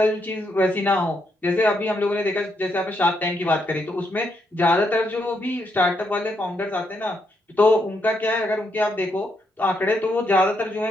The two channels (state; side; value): normal; both; correlation 0.78